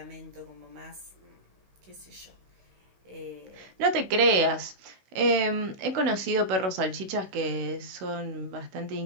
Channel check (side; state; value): left; late; 16 ms